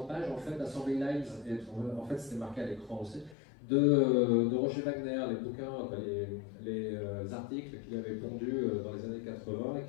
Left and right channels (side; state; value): right; drops out; at 3.4 s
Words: page en fait Assembly Lines. Et en fait, c'était marqué à l'écran aussi. De Roger Wagner, les bouquins, les articles qu'il avait pondus dans les années 80 et